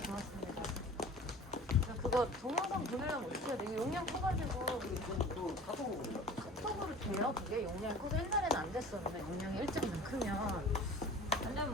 고맙습니다. 그거 동영상 보내려면 어떻게 해야 돼? 이거 용량 커가지고 또 카톡으로 카톡으로 돼요? 그게 용량이 커서 옛날에는 안 됐었는데 용량이 1.2만 크면 아니면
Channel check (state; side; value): normal; both; correlation 0.42